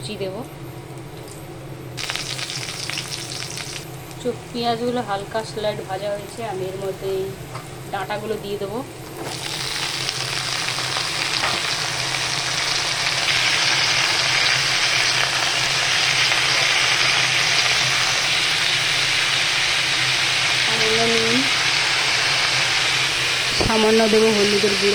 দেবো। পেঁয়াজগুলো হালকা স্লাইড ভাজা হয়েছে, আমি এর মধ্যে এই ডাঁটাগুলো দিয়ে দেবো। সামান্য নুন, সামান্য দেবো হলুদের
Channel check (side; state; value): both; identical; correlation 1.00